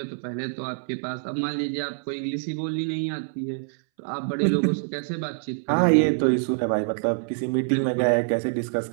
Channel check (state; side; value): silent; left; 61 dB below the other